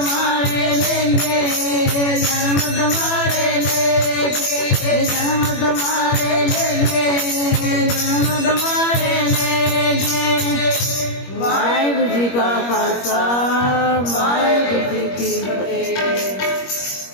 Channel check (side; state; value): right; late; 21 ms